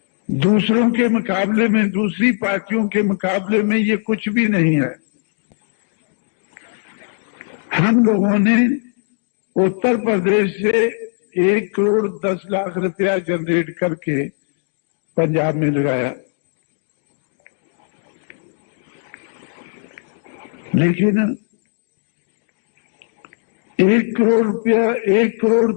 दूसरों के मुकाबले में, दूसरी पार्टियों के मुकाबले में ये कुछ भी नहीं है। हम लोगों ने उत्तर प्रदेश से 1 करोड़ 10 लाख रुपया जनरेट करके पंजाब में लगाया, लेकिन 1 करोड़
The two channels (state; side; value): silent; right; 66 dB below the other